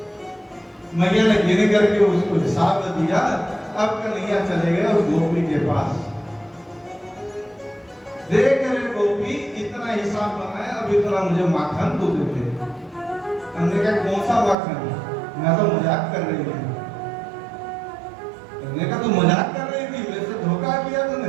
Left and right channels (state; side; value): drops out; left; at 14.6 s